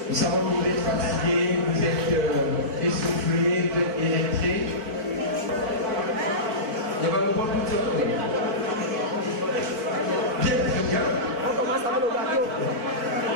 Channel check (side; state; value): left; late; 4.7 ms